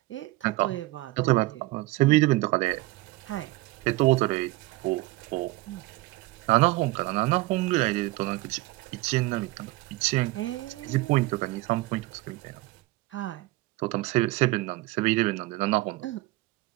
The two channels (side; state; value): left; quieter; 20.1 dB